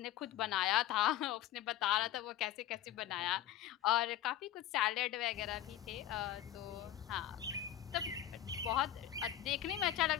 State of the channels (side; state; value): right; quieter; 12.2 dB